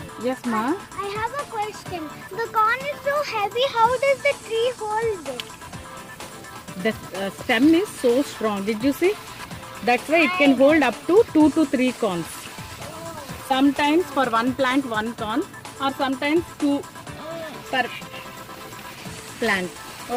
Yes, ma. I have a question. The corn is so heavy. How does the tree hold it? The stem is so strong. Did you see? That's why it can hold up to 2 to 3 corns. Sometimes for one plant, 1 corn, or sometimes 2 per plant.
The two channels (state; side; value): identical; both; correlation 1.00